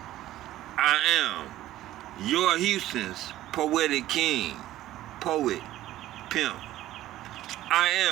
I am your Houston's poetic king, poet, pimp. I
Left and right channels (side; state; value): left; quieter; 14.5 dB